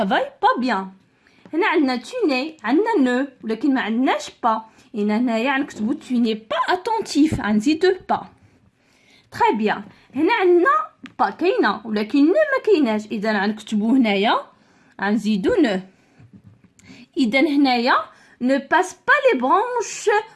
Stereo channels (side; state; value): both; identical; correlation 1.00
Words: pas bien. هنا عندنا tu n'es، عندنا نو ولكن ما عندناش با. هنايا غنكتبوا tu n'es pas attentif، غنزيدوه با. تري بيان. هنا عندنا با كاينه ولكن نو ما كايناش، اذا غنكتبوا هنايا غنزيدو نو. اذا هنايا ne passe pas les branches